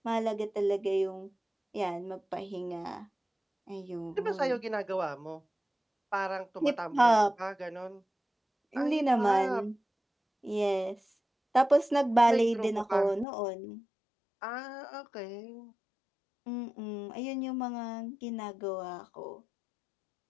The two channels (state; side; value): drops out; right; at 13.2 s